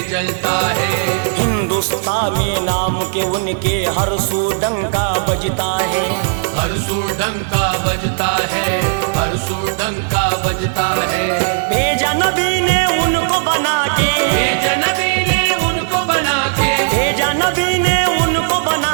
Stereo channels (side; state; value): left; silent; digital silence